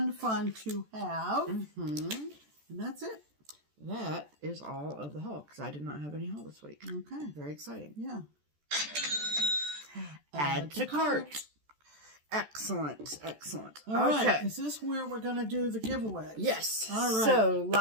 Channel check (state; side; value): late; left; 14 ms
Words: to have. Mm-hmm. And that's it. That is all of the haul, because I did not have any haul this week. Okay. Very exciting. Yeah. Add to cart. Excellent. All right. Is this where we're going to do the giveaway? Yes. All right. So